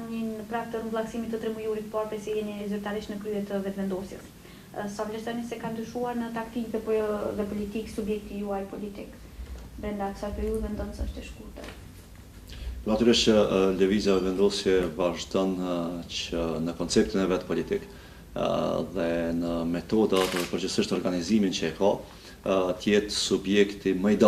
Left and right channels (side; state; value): both; identical; correlation 1.00